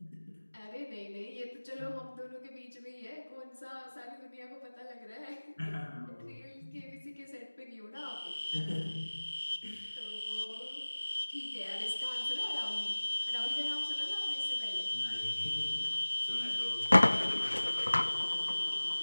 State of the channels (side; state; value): both; inverted; correlation -1.00